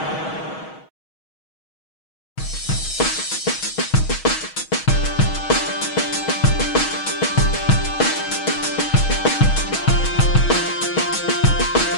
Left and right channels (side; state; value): right; late; 6.3 ms